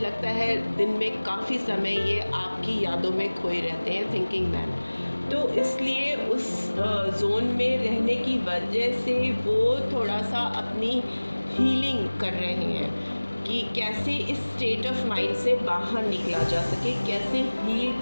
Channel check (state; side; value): inverted; both; correlation -1.00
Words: है दिन में काफ़ी समय ये आपकी यादों में खोए रहते हैं, थिंकिंग मैन। तो इसलिए उस जोन में रहने की वजह से वो थोड़ा सा अपनी हीलिंग कर रहे हैं कि कैसे इस स्टेट ऑफ माइंड से बाहर निकला जा सके, कैसे हील